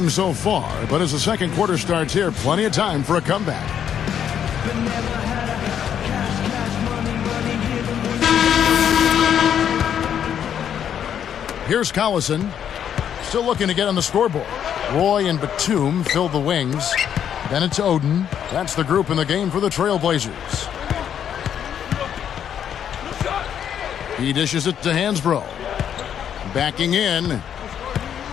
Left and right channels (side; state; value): right; quieter; 9.0 dB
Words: so far, but as the second quarter starts here, plenty of time for a comeback. Here's Collison, still looking to get on the scoreboard. Roy and Batum fill the wings. Then it's Oden. That's the group in the game for the Trailblazers. He dishes it to Hansbrough. Backing in.